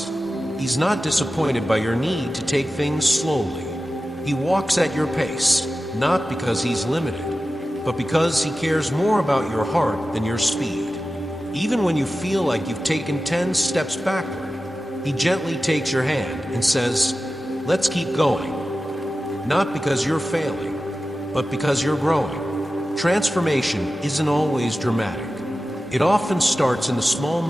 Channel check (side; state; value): both; normal; correlation 0.94